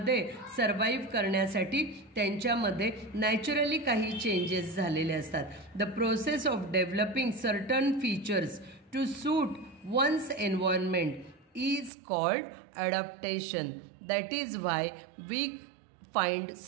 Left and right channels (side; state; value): left; drops out; at 11.9 s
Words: survive करण्यासाठी त्यांच्यामध्ये naturally काही changes झालेले असतात. The process of developing certain features to suit one's environment is called adaptation. That is why we find